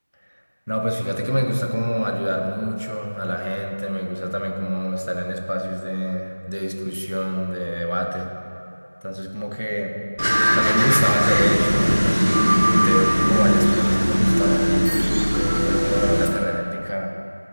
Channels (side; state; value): both; inverted; correlation -1.00